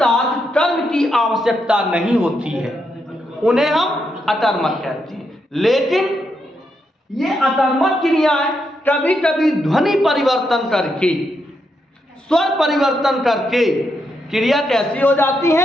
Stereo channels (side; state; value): both; normal; correlation 0.81